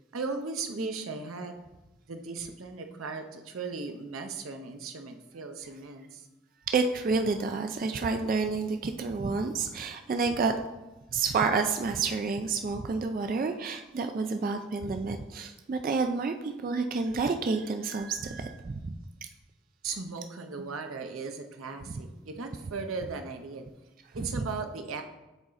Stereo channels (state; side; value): quieter; left; 4.0 dB